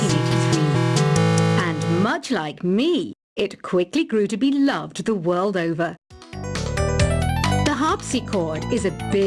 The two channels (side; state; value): both; identical; correlation 1.00